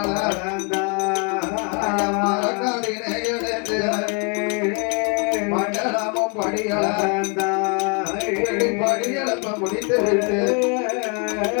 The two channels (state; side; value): quieter; right; 35.8 dB